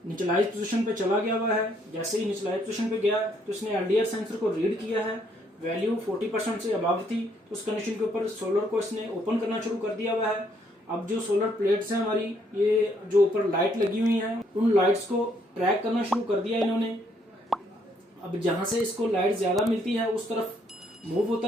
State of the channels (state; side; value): normal; both; correlation 0.69